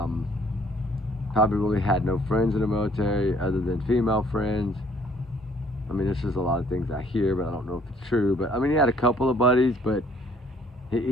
really had no friends in the military other than female friends. I mean, this is a lot of things I hear, but I don't know if it's true. But I mean, he had a couple of buddies, but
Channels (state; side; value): normal; both; correlation 0.60